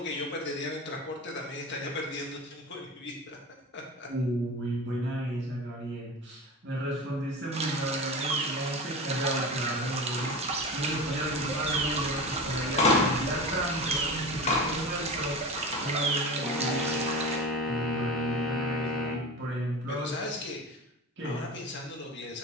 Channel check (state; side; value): normal; both; correlation 0.29